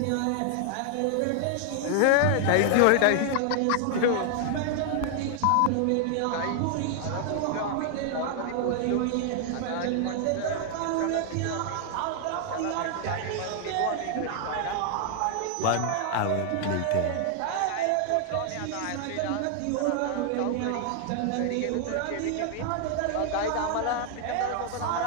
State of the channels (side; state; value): both; different; correlation 0.00